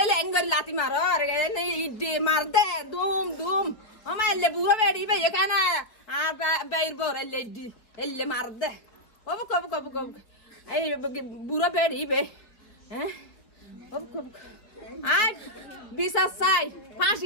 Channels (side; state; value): right; late; 4.2 ms